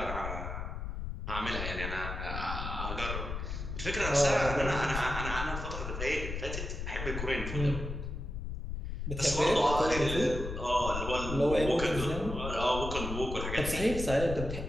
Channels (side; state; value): left; noise; rumble, 5 dB below the sound